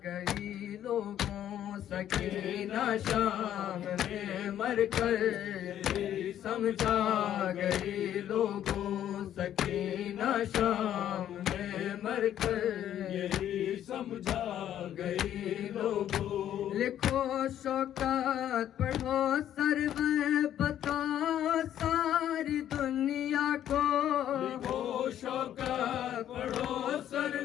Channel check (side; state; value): right; quieter; 11.0 dB